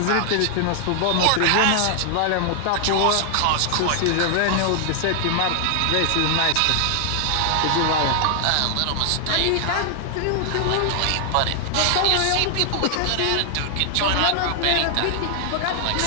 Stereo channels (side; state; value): both; different; correlation 0.00